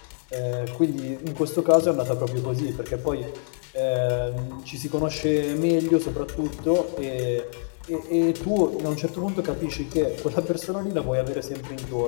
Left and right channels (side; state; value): right; silent; digital silence